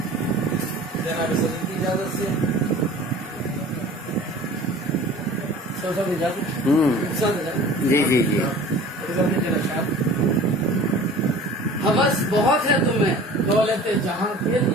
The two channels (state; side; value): normal; both; correlation 0.43